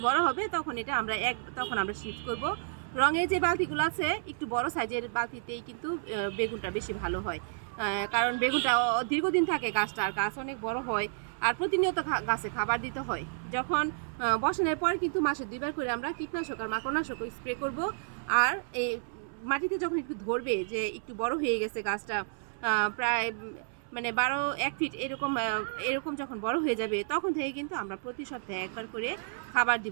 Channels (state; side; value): silent; left; 57 dB below the other